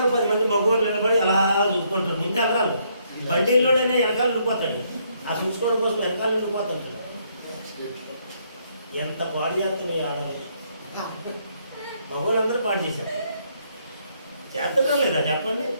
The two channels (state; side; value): inverted; both; correlation -0.72